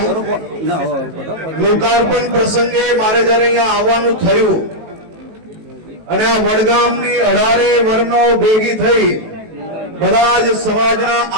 લોકાર્પણ પ્રસંગે મારે જ્યારે અહીંયા આવવાનું થયું અને આ વડગામની 18 વર્ણો ભેગી થઈ બધા જ સમાજના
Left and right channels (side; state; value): left; late; 18 ms